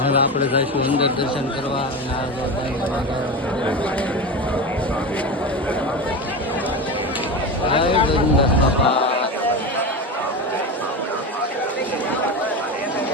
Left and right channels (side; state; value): both; normal; correlation 0.22